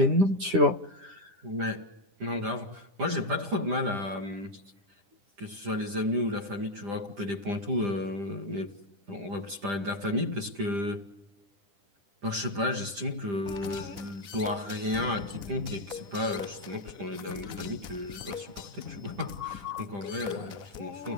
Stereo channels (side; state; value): left; late; 10 ms